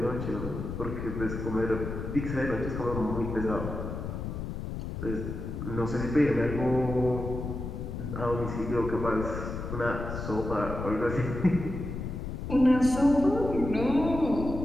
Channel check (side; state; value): left; noise; rumble, 6 dB below the sound